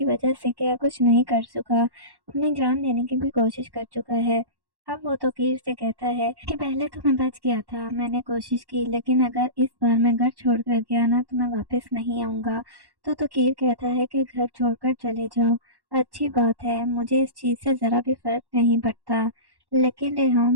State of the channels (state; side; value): late; left; 1.1 ms